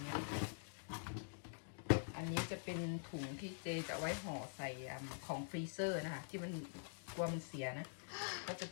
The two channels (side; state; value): right; silent; digital silence